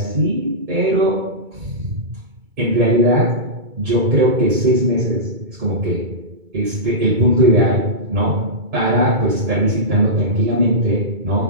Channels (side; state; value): left; late; 2.2 ms